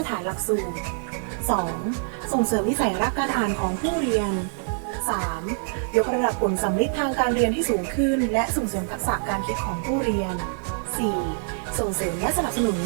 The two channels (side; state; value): left; silent; 62 dB below the other